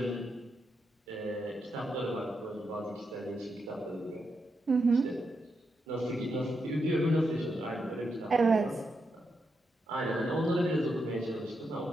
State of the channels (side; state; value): both; normal; correlation 0.84